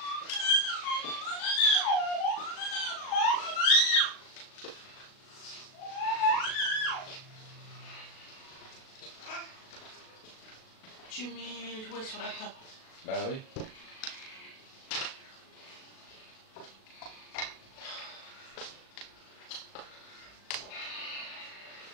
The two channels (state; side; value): late; right; 37 ms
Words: Tu mets les jouets sur la table. bah oui.